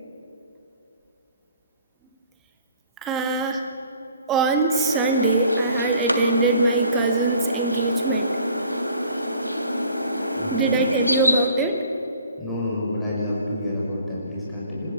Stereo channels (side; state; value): both; inverted; correlation -0.53